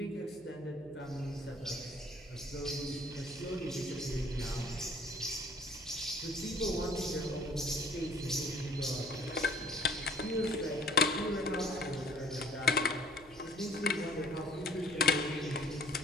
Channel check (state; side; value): noise; right; hum, 24 dB below the sound